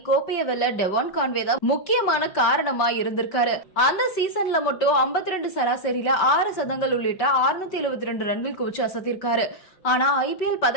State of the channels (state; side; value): late; right; 5.3 ms